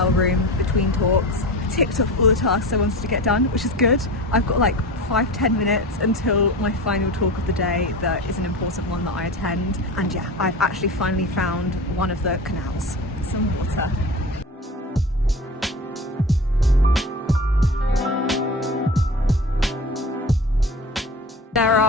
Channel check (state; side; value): normal; both; correlation 0.31